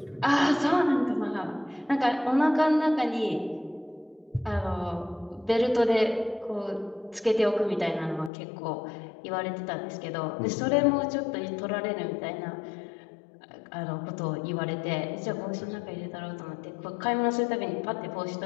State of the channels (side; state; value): right; drops out; at 8.3 s